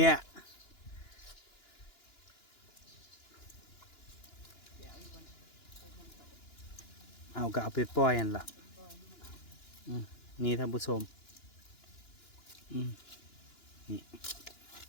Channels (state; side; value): late; right; 2.9 ms